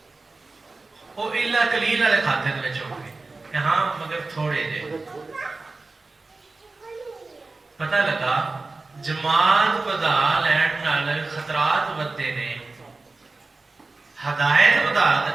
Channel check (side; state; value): left; quieter; 3.5 dB